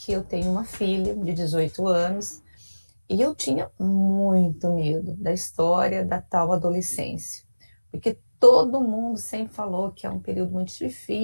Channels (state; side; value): inverted; both; correlation -1.00